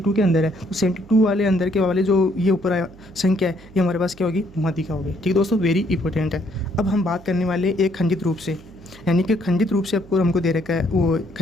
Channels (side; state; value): right; noise; hum, 23 dB below the sound